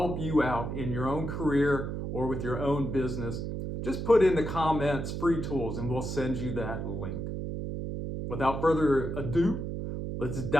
you out in your own career or with your own business, just put in the comments free tools and we'll send you that link. Without further ado, let's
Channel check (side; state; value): right; noise; hum, 4 dB below the sound